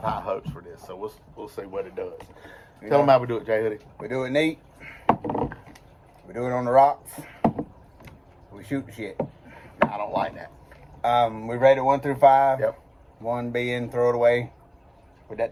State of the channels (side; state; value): both; identical; correlation 1.00